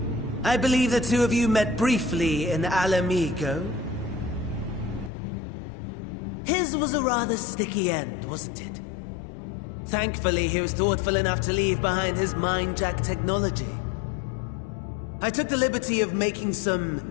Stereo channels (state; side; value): drops out; right; at 5.1 s